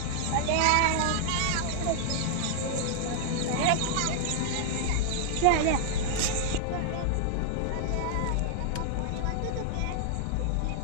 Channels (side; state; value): both; different; correlation -0.01